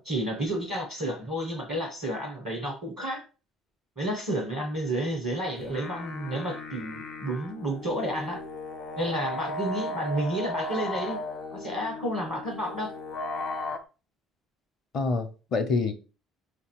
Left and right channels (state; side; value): normal; both; correlation 0.51